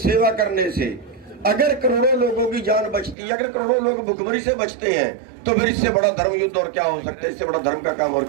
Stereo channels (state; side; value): drops out; left; at 3.2 s